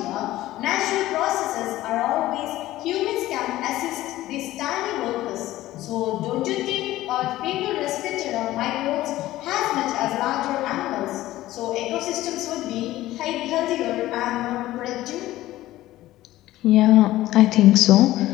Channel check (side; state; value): right; quieter; 15.7 dB